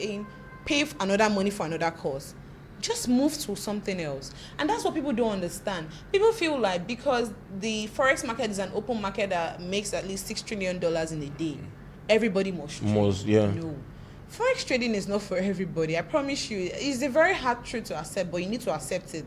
pay another money for another course. Just move to something else. And that's what people don't understand. People feel like because the Forex market is an open market that makes at least $6 trillion in a day, everybody must trade. Yeah. No. Forex trading is not for everybody. I promise you. It's a very hard truth to accept, but you need to accept it.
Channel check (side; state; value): both; identical; correlation 1.00